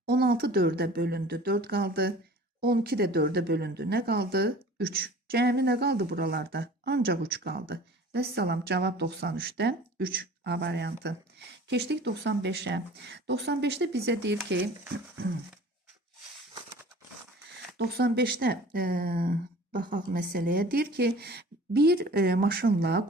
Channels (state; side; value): normal; both; correlation 0.44